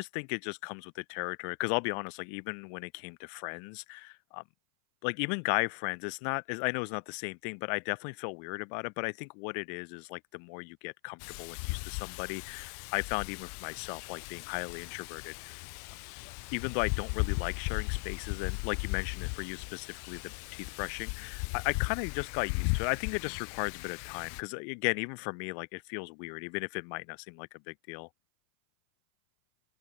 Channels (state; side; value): silent; right; 53 dB below the other